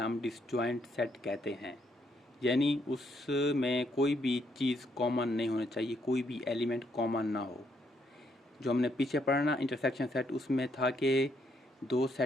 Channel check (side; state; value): both; normal; correlation 0.73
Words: डिसजॉइंट सेट कहते हैं। यानी उसमें कोई भी चीज़ कॉमन नहीं होनी चाहिए, कोई भी एलिमेंट कॉमन ना हो। जो हमने पीछे पढ़ा ना इंटरसेक्शन सेट, उसमें था कि दो